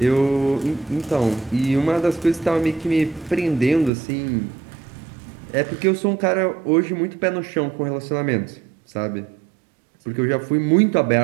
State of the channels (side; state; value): left; drops out; at 3.9 s